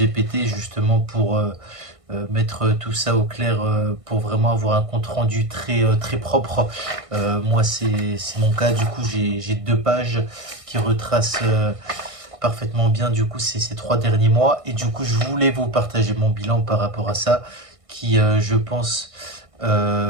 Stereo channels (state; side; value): late; left; 1.6 ms